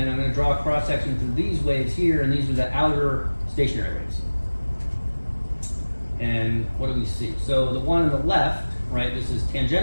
I'm going to draw a cross section through these waves here, and these are the outer stationary waves. And what do we see? So the one on the left, right, this is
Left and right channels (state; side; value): inverted; both; correlation -1.00